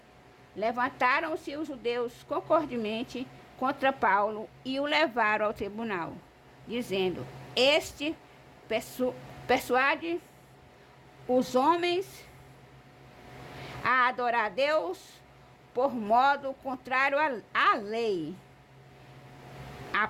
levantaram-se os judeus concordemente contra Paulo e o levaram ao tribunal, dizendo: este persuade os homens a adorar a Deus por modo contrário à lei.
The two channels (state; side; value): identical; both; correlation 1.00